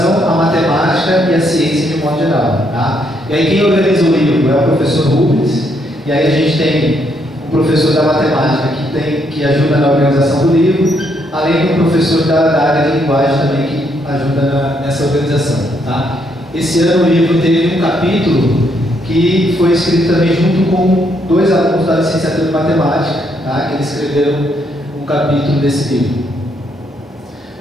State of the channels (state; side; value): normal; both; correlation 0.74